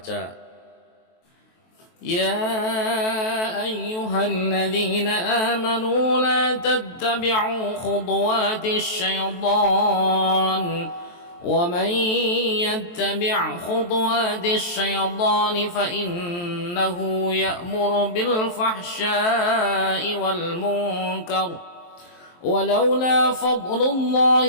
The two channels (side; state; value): right; late; 23 ms